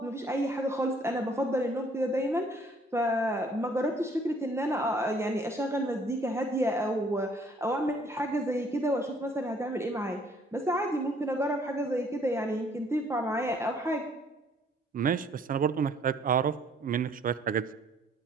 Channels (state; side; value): normal; both; correlation 0.61